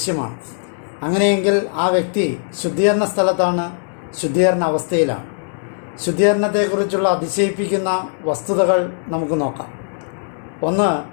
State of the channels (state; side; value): silent; right; 66 dB below the other